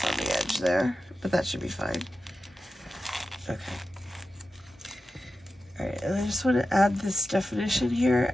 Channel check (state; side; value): normal; both; correlation 0.92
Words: on the edge there, but that should be fine. Okay. All right, and I just want to add this definition here